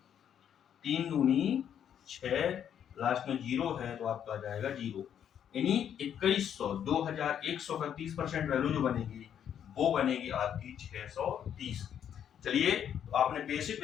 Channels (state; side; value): quieter; right; 9.1 dB